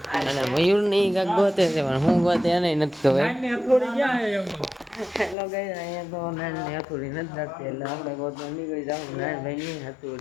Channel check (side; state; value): right; drops out; at 5.4 s